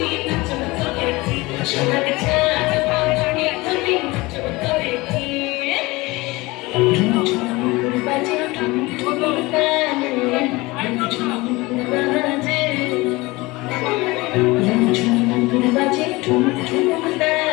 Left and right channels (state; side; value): quieter; right; 22.1 dB